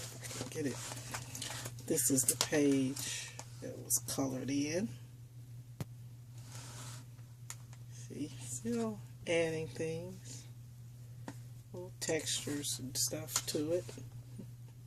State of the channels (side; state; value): both; identical; correlation 1.00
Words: I can get it. This is the page that was colored in. See, still adding things, little textures and stuff to it.